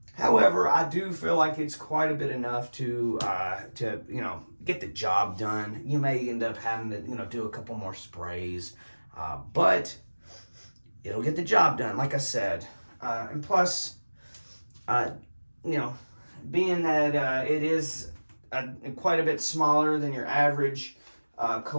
However, I do feel like it's quite a bit enough to get the job done. You may end up having to, do a couple more sprays, but it'll get the job done, like I said. And plus, being that it is quite a bit smaller than your average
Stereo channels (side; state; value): both; inverted; correlation -1.00